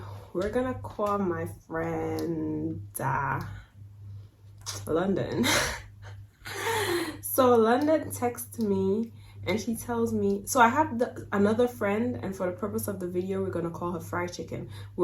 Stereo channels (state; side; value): identical; both; correlation 1.00